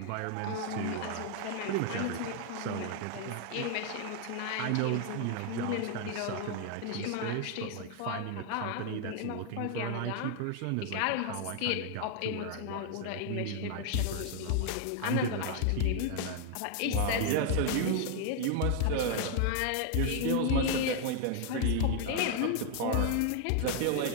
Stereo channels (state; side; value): different; both; correlation 0.00